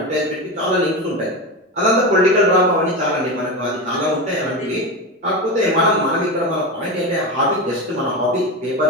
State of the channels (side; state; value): both; normal; correlation 0.20